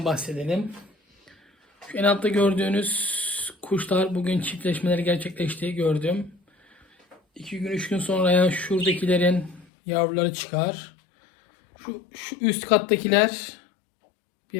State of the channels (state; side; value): drops out; right; at 9.7 s